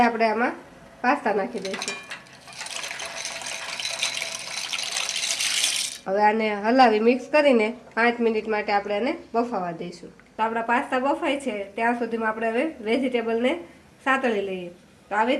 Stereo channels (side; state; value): both; identical; correlation 1.00